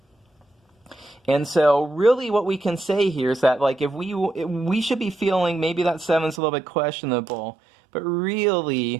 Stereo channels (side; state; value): left; drops out; at 6.4 s